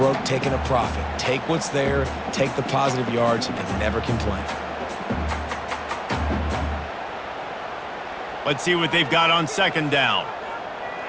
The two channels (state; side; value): identical; both; correlation 1.00